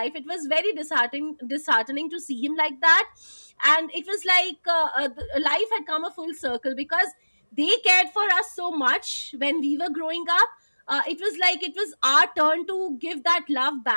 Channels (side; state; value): both; inverted; correlation -1.00